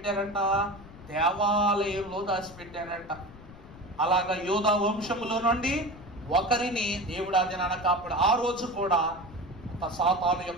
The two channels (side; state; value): left; noise; rumble, 19 dB below the sound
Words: దేవాలయంలో దాచిపెట్టారంట. అలాగా యోధా వంశములో నుండి ఒకరిని దేవుడు ఆ దినాన కాపాడు. ఆ రోజు కూడా సాతాను